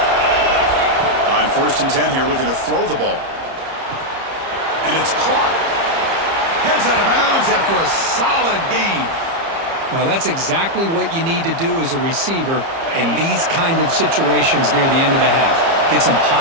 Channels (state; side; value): late; left; 30 ms